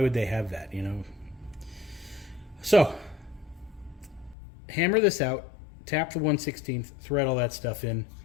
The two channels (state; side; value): drops out; right; at 4.4 s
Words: they have that, you know? So, hammer this out, tap the 1/16, thread all that stuff in,